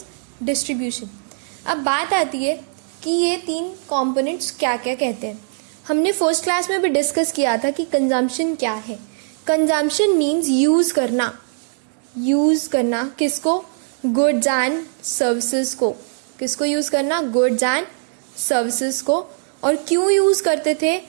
distribution. अब बात आती है कि ये 3 components क्या क्या कहते हैं. हमने फर्स्ट क्लास में भी डिस्कस किया था कि कंजम्पशन क्या है. कंजम्पशन मीन्स यूज करना किसको? गुड्स एंड सर्विसेज को. किसको यूज करना? गुड्स एंड सर्विसेज को. और क्यों यूज करते थे?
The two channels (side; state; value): left; silent; digital silence